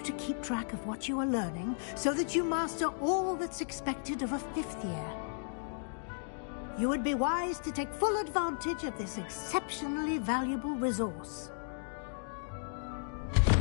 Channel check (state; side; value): silent; right; digital silence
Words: to keep track of what you are learning so that you master all that's expected of a 5th year. You would be wise to take full advantage of this exceptionally valuable resource.